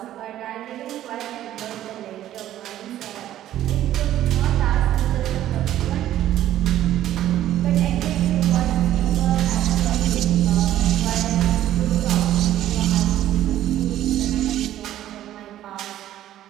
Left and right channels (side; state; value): left; quieter; 12.8 dB